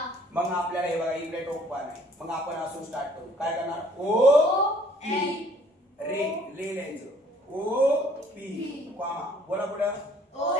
मग आपल्याला हे बघा इकडे टोक बाण आहे. मग आपण असून स्टार्ट करू. काय करणार? ओ पी. रे लिहायचं. O P comma. बोला पुढं. O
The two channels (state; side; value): normal; both; correlation 0.58